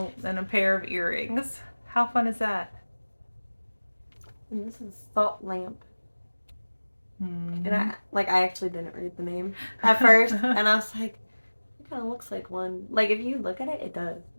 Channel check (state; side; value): inverted; both; correlation -1.00